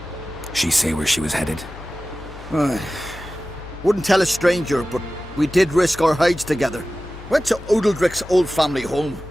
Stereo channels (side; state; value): left; noise; hum, 15 dB below the sound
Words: She say where she was headed? Wouldn't tell a stranger, but we did risk our hides together. Went to Odeldrick's old family home.